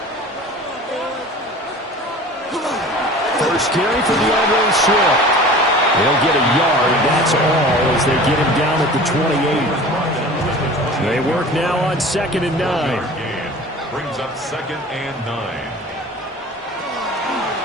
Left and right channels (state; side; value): normal; both; correlation 0.41